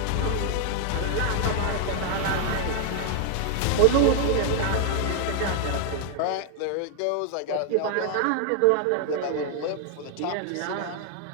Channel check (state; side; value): different; both; correlation 0.00